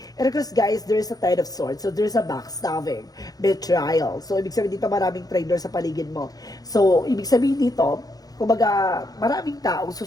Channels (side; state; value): right; late; 0.18 ms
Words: And of course, guys, there's a Ten of Swords. So, there's a backstabbing. Betrayal. So, ibig sabihin dito, maraming traitor sa paligid mo. So, ibig sabihin dito, kumbaga, maraming tao